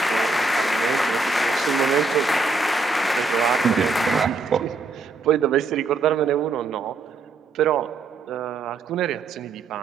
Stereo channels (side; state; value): left; quieter; 3.7 dB